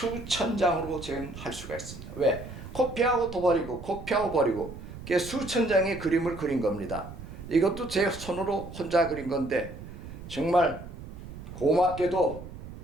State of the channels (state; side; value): noise; right; rumble, 12 dB below the sound